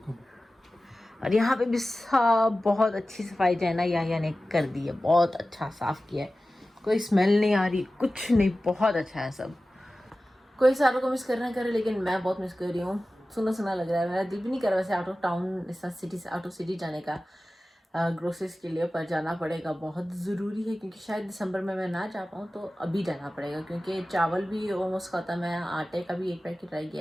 और यहाँ पे भी सब बहुत अच्छी सफाई जो है ना याया ने कर दी है, बहुत अच्छा साफ किया है। कोई स्मेल नहीं आ रही, कुछ नहीं, बहुत अच्छा है सब। कोई सारों को मिस करना करे, लेकिन मैं बहुत मिस कर रही हूँ। सुना सुना लग रहा है, मेरा दिल भी नहीं कर रहा वैसे आउट ऑफ टाउन, इस सिटी से आउट ऑफ सिटी जाने का ग्रोसरीज के लिए, पर जाना पड़ेगा, बहुत ज़रूरी है। क्योंकि शायद दिसंबर में मैं ना जा पाऊँ तो अभी जाना पड़ेगा, क्योंकि चावल भी ऑलमोस्ट ख़त्म है, आटे का भी 1 पैकेट रह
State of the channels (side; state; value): both; normal; correlation 0.96